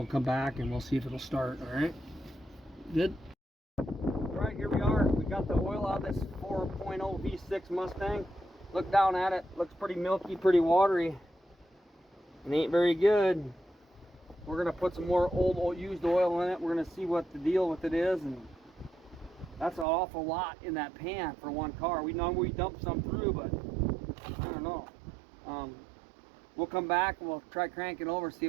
come back and we'll see if it'll start. All right, good. All right, here we are. We got the oil out of this 4.0 V6 Mustang. Look down at it. Looks pretty milky, pretty watery. It ain't very good. We're gonna put some more old used oil in it. We're gonna see what the deal with it is, and that's an awful lot in that pan for one car. We know we dumped some through, but I don't know. We'll come back and we'll try cranking over, see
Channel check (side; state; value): left; drops out; at 19.9 s